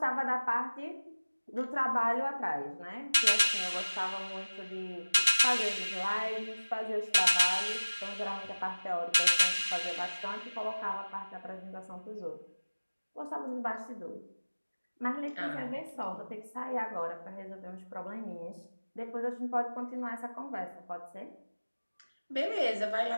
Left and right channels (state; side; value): inverted; both; correlation -1.00